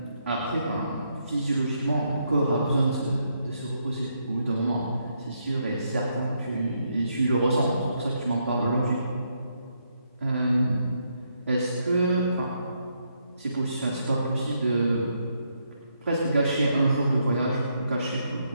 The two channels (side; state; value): both; inverted; correlation -0.77